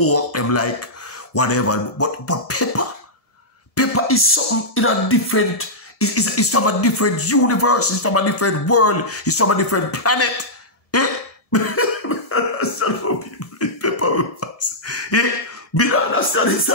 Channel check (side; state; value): right; late; 1.7 ms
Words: them like whatever. But pepper is something in a different, it's from a different universe, it's from a different world, it's from a different planet. Eh? I understand how people eat pepper with us. Eh? Me don't understand this.